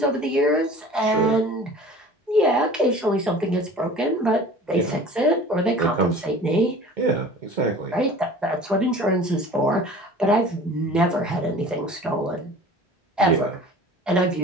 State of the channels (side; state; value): both; normal; correlation 0.43